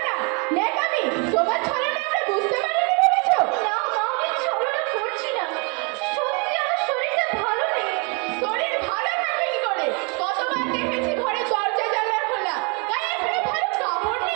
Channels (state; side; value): quieter; left; 33.4 dB